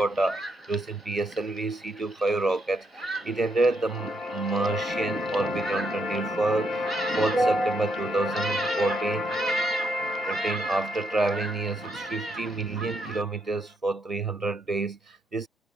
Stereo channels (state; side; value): normal; both; correlation 0.76